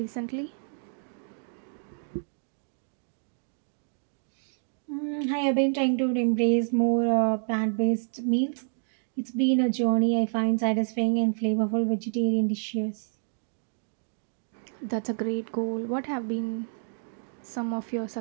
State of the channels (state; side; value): silent; left; digital silence